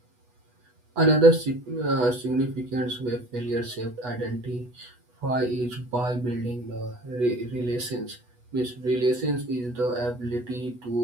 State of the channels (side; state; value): left; late; 8.2 ms